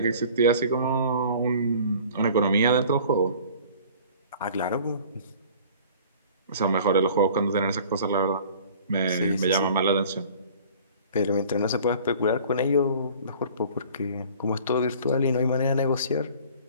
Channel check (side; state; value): both; inverted; correlation -0.48